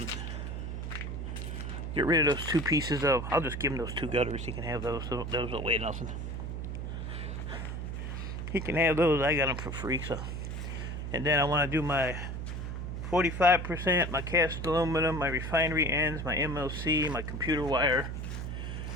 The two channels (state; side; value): noise; right; hum, 5 dB below the sound